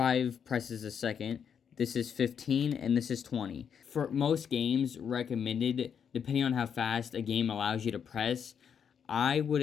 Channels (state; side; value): quieter; right; 7.6 dB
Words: presses a second. This is 15, and this is 20. For most games recommended, depending on how fast a game allows you to press, I